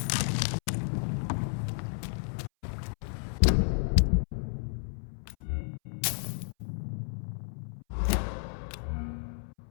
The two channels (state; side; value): silent; right; 57 dB below the other